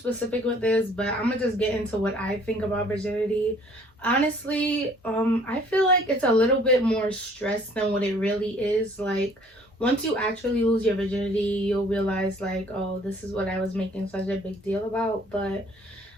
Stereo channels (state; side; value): normal; both; correlation 0.57